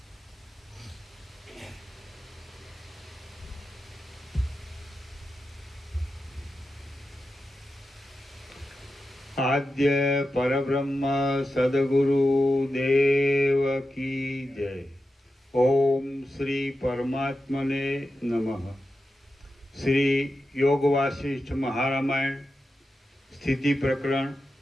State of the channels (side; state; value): both; normal; correlation 0.91